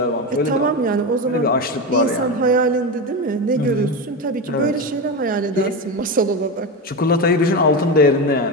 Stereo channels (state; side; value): normal; both; correlation 0.18